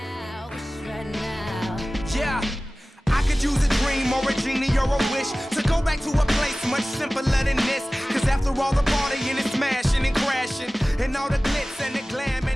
Yeah, I could use a dream or a genie or a wish to go back to a place much simpler than this. Cause after all the partying and smashing and crashing, and all the glitz and the glam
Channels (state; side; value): normal; both; correlation 0.97